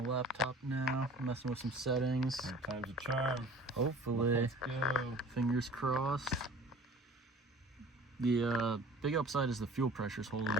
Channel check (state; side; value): normal; both; correlation 0.46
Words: laptop now, messing with some settings. Time's a charm. Hopefully. Let's go. Fingers crossed. The big upside is the fuel pressure's holding,